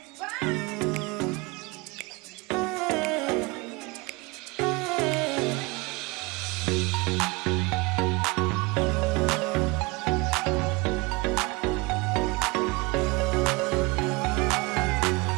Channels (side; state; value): left; quieter; 25.5 dB